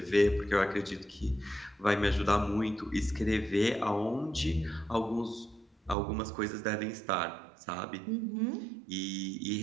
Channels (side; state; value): left; drops out; at 6.0 s